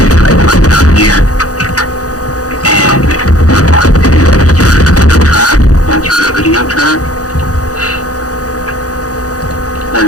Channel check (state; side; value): late; right; 0.67 ms